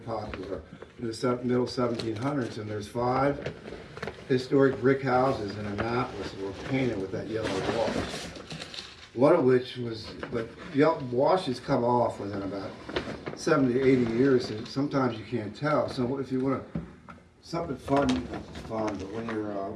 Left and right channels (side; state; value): both; identical; correlation 1.00